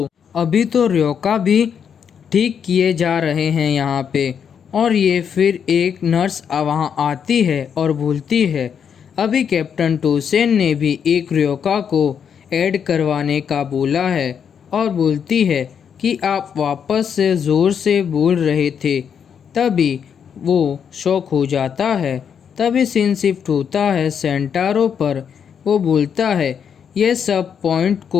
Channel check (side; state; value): right; quieter; 7.5 dB